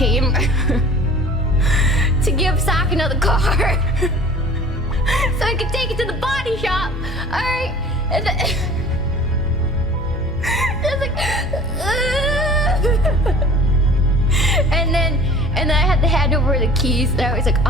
to give Sakana the car so I could take it to the body shop. Alright. And then I was like, and then I had to hand over the keys, and I was like,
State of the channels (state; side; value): normal; both; correlation 0.45